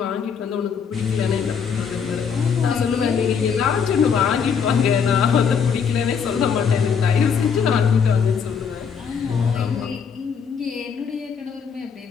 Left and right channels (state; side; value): quieter; right; 6.6 dB